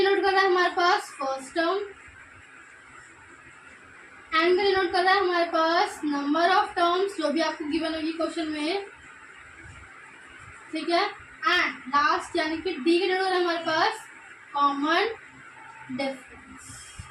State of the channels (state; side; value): identical; both; correlation 1.00